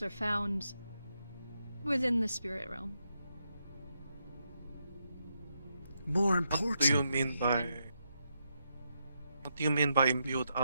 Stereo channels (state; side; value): inverted; both; correlation -0.82